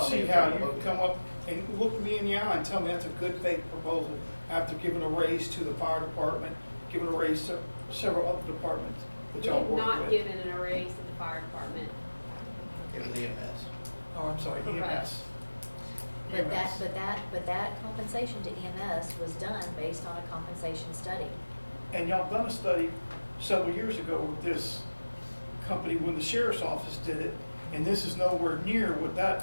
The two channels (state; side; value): inverted; both; correlation -1.00